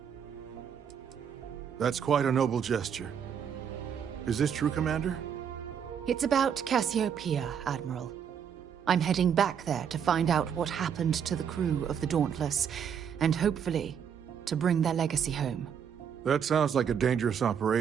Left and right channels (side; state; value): left; quieter; 7.9 dB